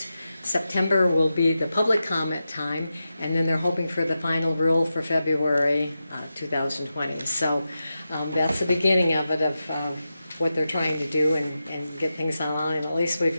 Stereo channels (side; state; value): both; inverted; correlation -0.90